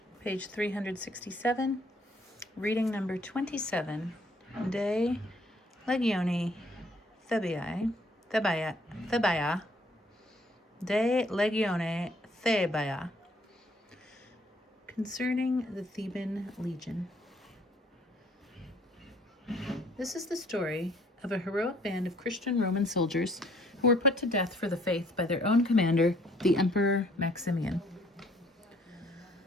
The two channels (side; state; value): both; normal; correlation 0.62